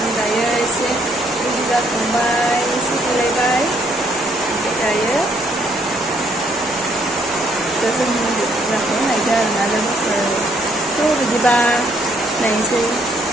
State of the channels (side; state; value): both; normal; correlation 0.68